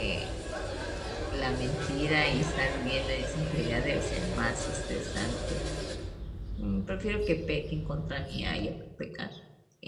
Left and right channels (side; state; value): both; identical; correlation 1.00